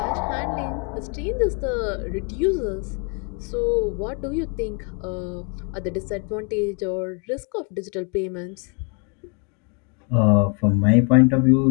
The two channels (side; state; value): right; quieter; 35.8 dB